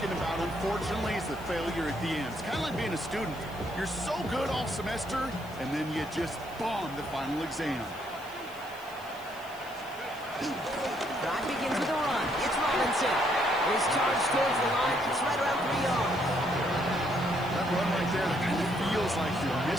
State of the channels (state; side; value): noise; right; hiss, 22 dB below the sound